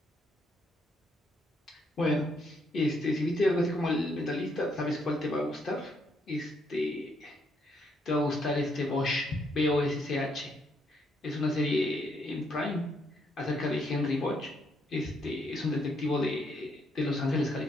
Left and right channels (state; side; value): normal; both; correlation 0.74